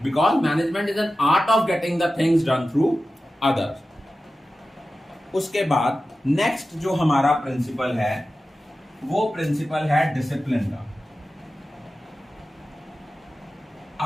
because management is an art of getting the things done through others. उसके बाद नेक्स्ट जो हमारा प्रिंसिपल है वो प्रिंसिपल है डिसिप्लिन का।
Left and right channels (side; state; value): both; normal; correlation 0.94